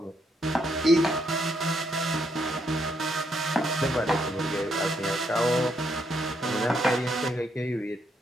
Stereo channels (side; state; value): both; normal; correlation 0.75